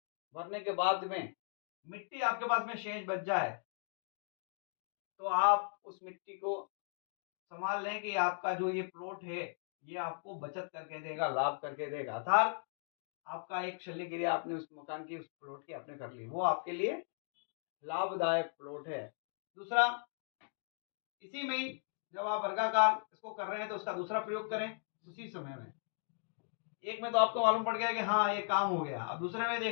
भरने के बाद में मिट्टी आपके पास में शेष बच जाए, तो आप उस मिट्टी को संभाल लें कि आपका जो ये प्लॉट है ये आपको बचत करके देगा, लाभ करके देगा। अर्थात आपका एक शल्य क्रिया आपने उस मकान की, उस प्लॉट की आपने कर ली, वो आपके लिए लाभदायक प्लॉट है। दूसरा, इसी में ही जब आप वर्गाकार इसको कर रहे हैं तो उसका दूसरा प्रयोग करें उसी समय में। एक में तो आपको मालूम पड़ गया कि हाँ ये काम हो गया, अब दूसरे में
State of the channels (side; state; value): right; silent; digital silence